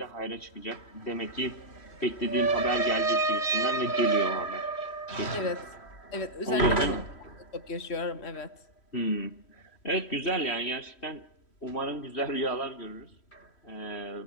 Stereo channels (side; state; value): right; late; 3.1 ms